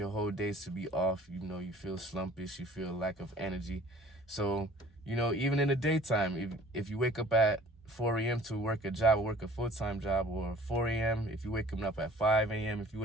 whole days to be off. You feel slumpish, you feel lack of energy. So, even in the daytime, if you wake up at 4 a.m. to work a job, or work a full-time job, or 4 a.m., if you wake up at 5 a.m., if you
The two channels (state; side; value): normal; both; correlation 0.50